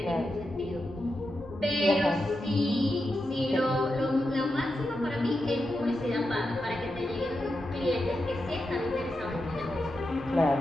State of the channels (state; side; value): normal; both; correlation 0.88